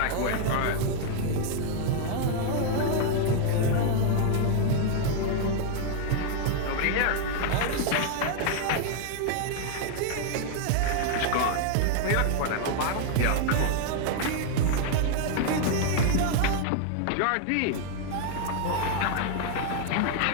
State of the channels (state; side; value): different; both; correlation 0.00